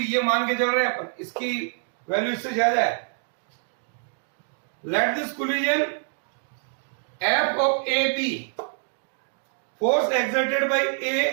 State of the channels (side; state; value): left; silent; 61 dB below the other